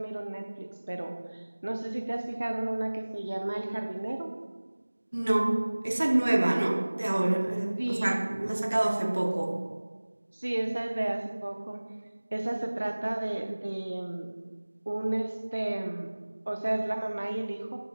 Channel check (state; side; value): inverted; both; correlation -1.00